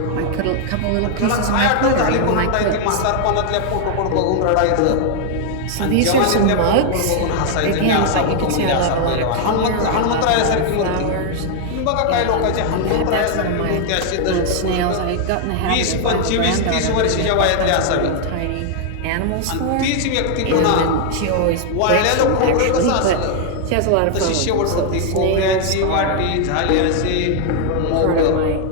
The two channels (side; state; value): both; different; correlation 0.00